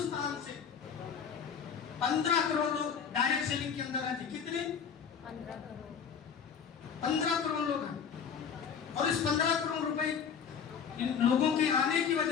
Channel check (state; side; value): quieter; right; 7.0 dB